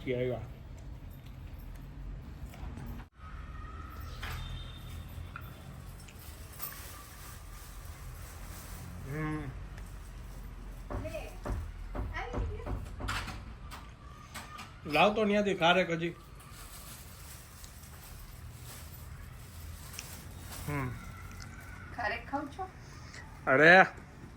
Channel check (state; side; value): identical; both; correlation 1.00